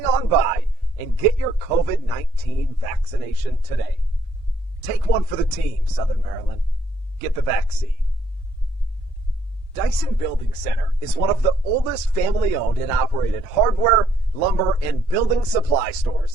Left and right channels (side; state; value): both; normal; correlation 0.69